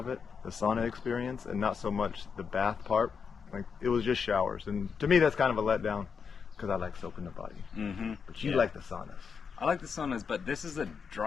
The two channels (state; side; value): quieter; right; 6.1 dB